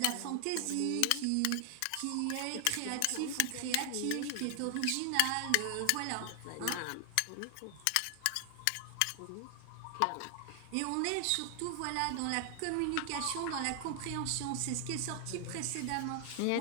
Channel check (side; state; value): both; different; correlation 0.00